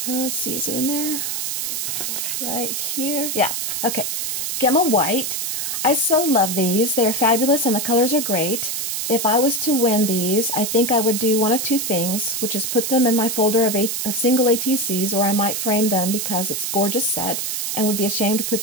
let's see, is it in there? Right here? Yeah, okay. Gemma White. I so love these. They're fabulous and the colors are great. If I was to win these, I think I would do one of two things, which is put them in my folder of single ATCs, or I might frame them because it's a gorgeous set and would be ashamed to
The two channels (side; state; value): right; noise; hiss, 2 dB below the sound